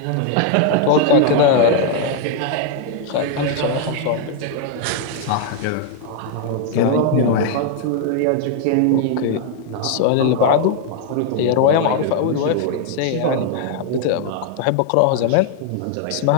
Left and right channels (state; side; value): different; both; correlation 0.00